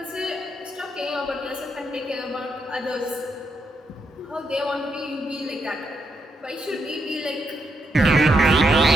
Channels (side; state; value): both; normal; correlation 0.79